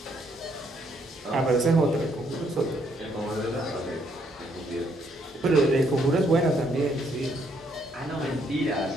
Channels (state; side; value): normal; both; correlation 0.71